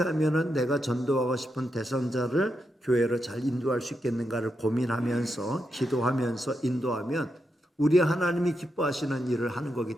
하면 내가 전도하고 싶은 대상자를 교회로 잘 인도할 수 있겠는가를 고민하면서 기도하면서 인도하면 우리 하나님이 기뻐하시는 일을 하는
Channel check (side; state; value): both; normal; correlation 0.84